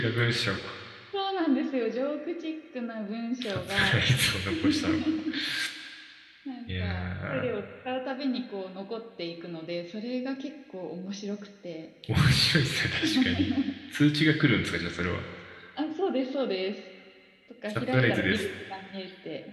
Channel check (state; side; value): identical; both; correlation 1.00